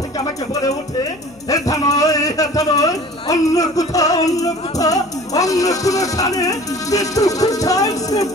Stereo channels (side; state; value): left; noise; hum, 28 dB below the sound